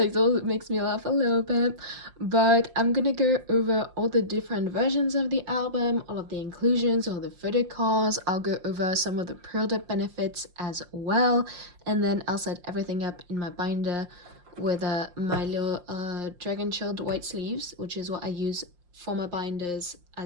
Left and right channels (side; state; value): left; late; 5.7 ms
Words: makes me laugh a little bit, but I'm gonna go over all the different versions of the album, all of the inclusions, all the photo cards. I'll go over some of the pre-order benefits as well, and then I'll set everything up in my binder with my little dragon shield white sleeves, which is what I use for my binders